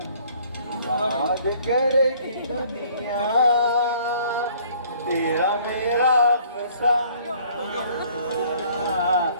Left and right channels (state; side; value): inverted; both; correlation -0.57